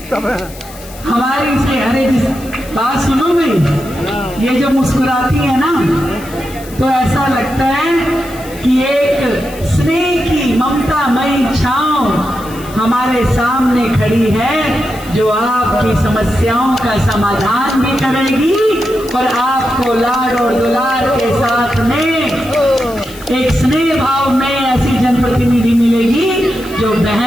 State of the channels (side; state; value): left; noise; hiss, 19 dB below the sound